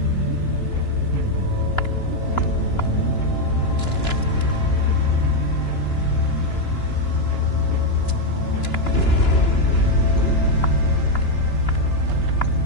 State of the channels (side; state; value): right; late; 2.9 ms